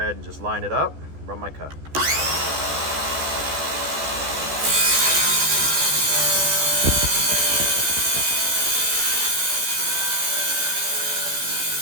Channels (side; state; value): left; late; 14 ms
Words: and just line it up, run my cut.